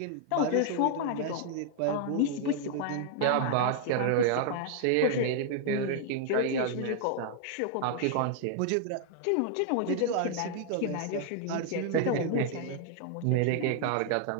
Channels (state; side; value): different; both; correlation 0.00